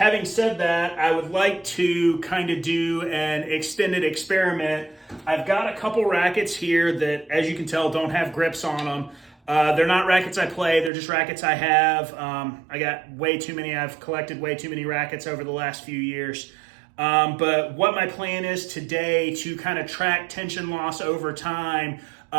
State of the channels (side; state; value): left; drops out; at 10.9 s